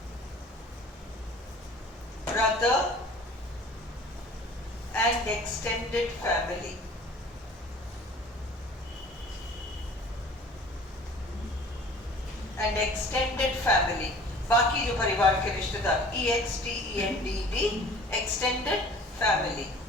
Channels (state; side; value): normal; both; correlation 0.47